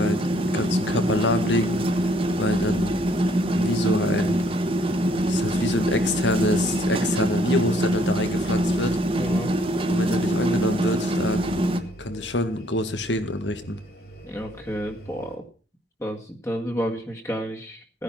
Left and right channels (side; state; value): both; normal; correlation 0.65